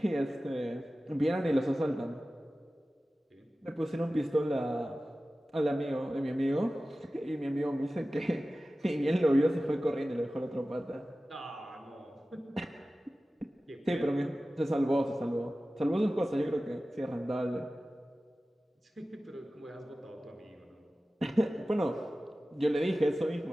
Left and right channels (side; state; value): both; normal; correlation 0.96